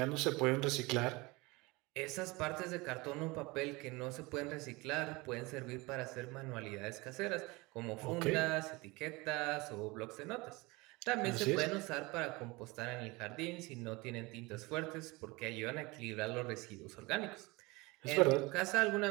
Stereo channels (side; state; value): left; quieter; 23.9 dB